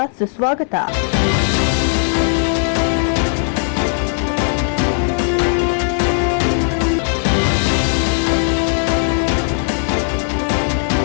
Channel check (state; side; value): silent; right; 60 dB below the other